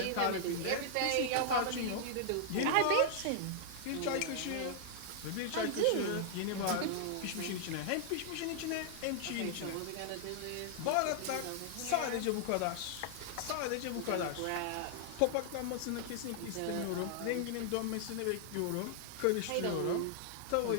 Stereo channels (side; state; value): both; different; correlation -0.01